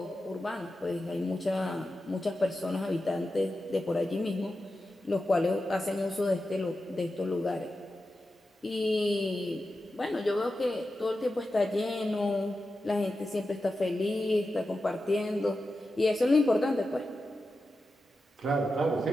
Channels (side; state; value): both; normal; correlation 0.91